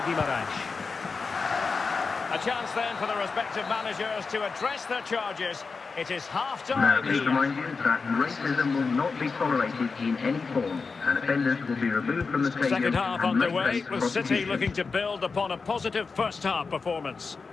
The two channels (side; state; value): right; quieter; 4.6 dB